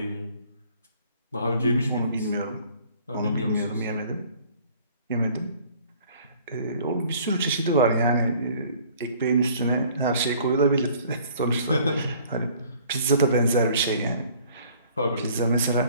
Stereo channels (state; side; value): inverted; both; correlation -0.55